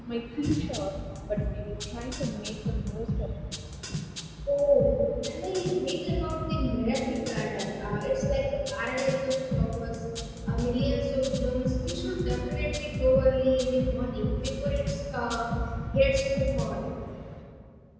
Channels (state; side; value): identical; both; correlation 1.00